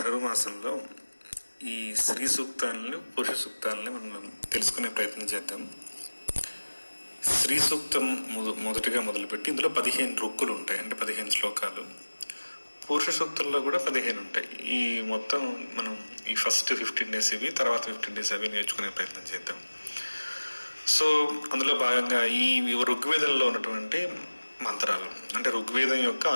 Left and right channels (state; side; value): inverted; both; correlation -1.00